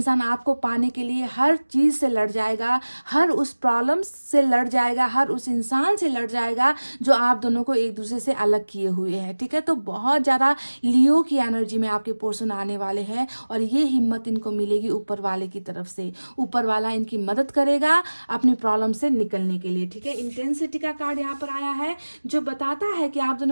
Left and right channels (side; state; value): both; inverted; correlation -1.00